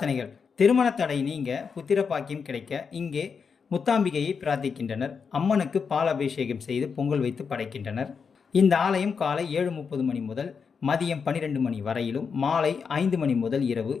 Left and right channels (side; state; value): right; quieter; 5.9 dB